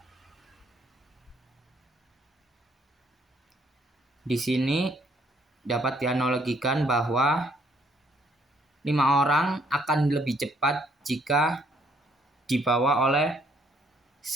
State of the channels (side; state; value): both; normal; correlation 0.67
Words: di sini dapat dianalogikan bahwa 5 orang akan lebih cepat jika dibawa oleh